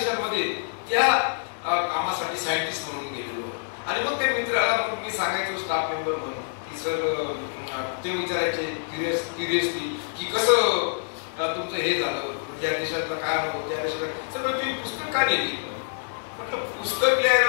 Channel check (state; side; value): silent; right; digital silence